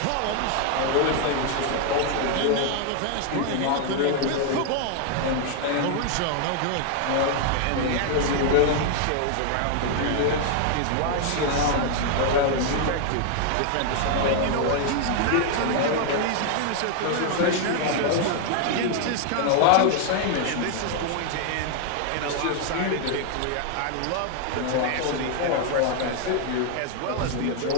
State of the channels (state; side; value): different; both; correlation 0.00